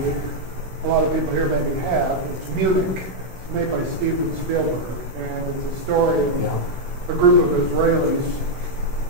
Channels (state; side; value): late; left; 16 ms